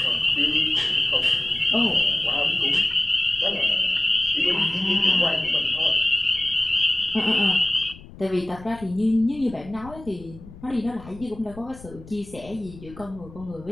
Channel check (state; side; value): noise; left; rumble, 18 dB below the sound